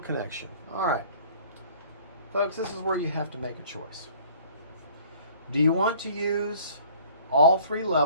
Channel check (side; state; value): both; inverted; correlation -0.52